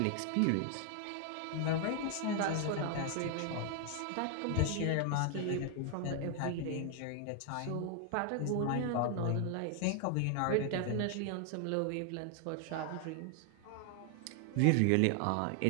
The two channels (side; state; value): both; different; correlation 0.00